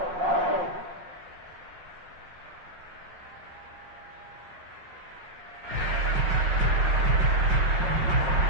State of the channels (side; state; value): left; late; 5.5 ms